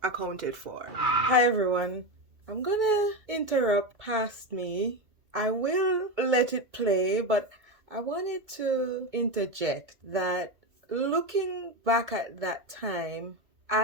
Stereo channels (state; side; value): late; left; 2.3 ms